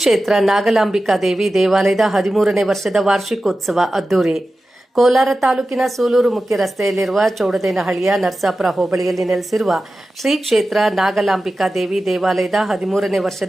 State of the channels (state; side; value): normal; both; correlation 0.94